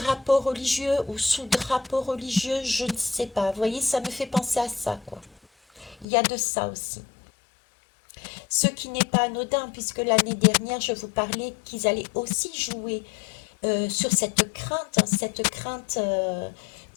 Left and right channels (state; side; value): drops out; right; at 6.1 s